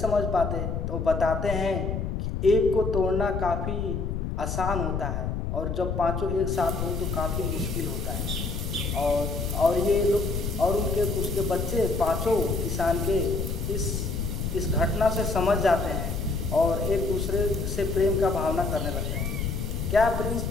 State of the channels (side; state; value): left; noise; rumble, 2 dB below the sound